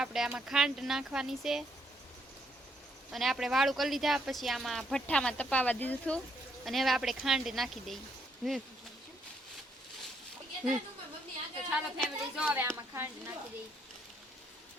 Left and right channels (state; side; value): normal; both; correlation 0.73